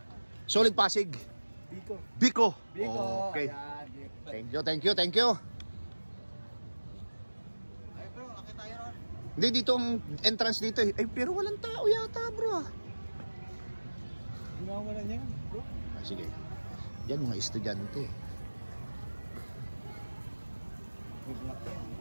Solid Pasig? Biko. Okay. Thank you. Hindi, dito ang entrance dito eh. Ay, pero walang tao yata, bro. Wala niya, bro. Sige. Yan, mga estudyante.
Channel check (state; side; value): inverted; both; correlation -1.00